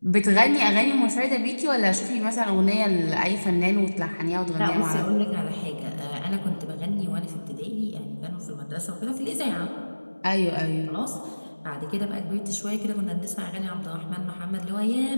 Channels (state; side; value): inverted; both; correlation -1.00